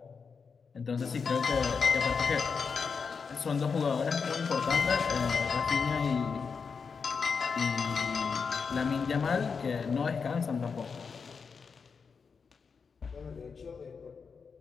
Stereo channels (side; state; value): right; quieter; 5.5 dB